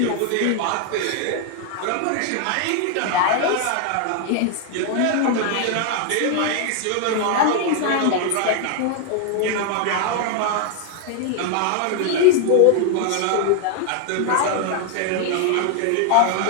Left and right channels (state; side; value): different; both; correlation 0.00